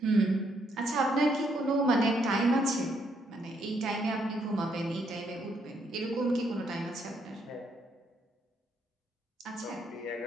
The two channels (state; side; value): normal; both; correlation 0.73